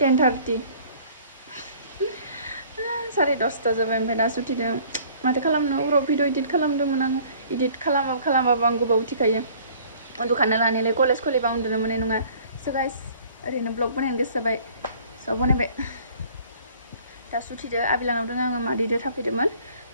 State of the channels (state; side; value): inverted; both; correlation -0.53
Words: 10:30 जाबाय ओमफ्राय दासो उथिदों. माथो खालामनो उराव भिडिअ एडिट खालामदोंमोन आङो. एडिट खालामाबा आं गोबाव उथिखायो. उन्दुखानो लानायलाय कलेज खुलिबा उन्दुनो मोननाय नङा. So guys, ओरैनो ब्लग बानायनो गोसो जाबाय. So बनायबाय. दासो उथिदो आबिलानाव दङ आङो मादैदो थाफैदोंमोन.